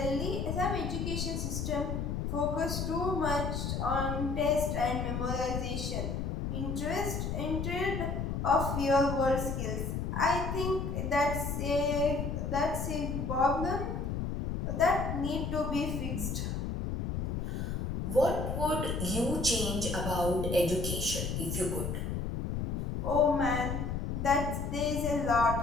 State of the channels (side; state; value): left; noise; rumble, 2 dB below the sound